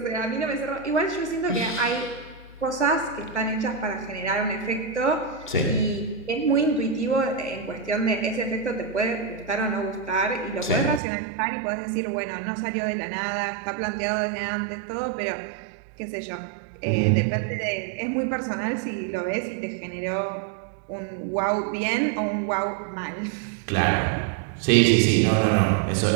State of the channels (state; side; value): drops out; left; at 11.0 s